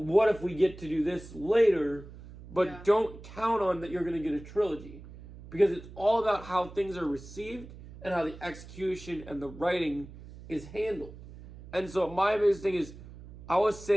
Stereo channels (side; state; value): right; noise; hum, 16 dB below the sound